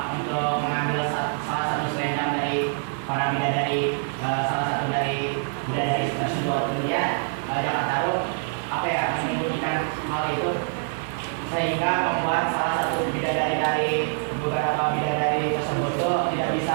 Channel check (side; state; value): left; silent; 62 dB below the other